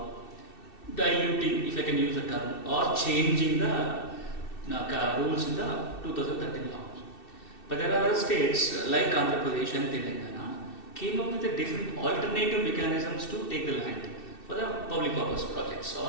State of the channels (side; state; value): right; late; 2.7 ms